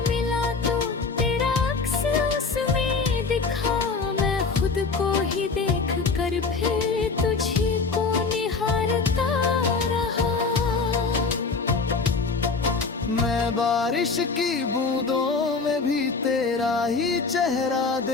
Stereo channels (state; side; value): quieter; right; 4.5 dB